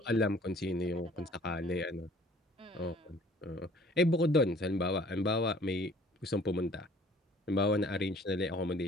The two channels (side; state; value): both; normal; correlation 0.54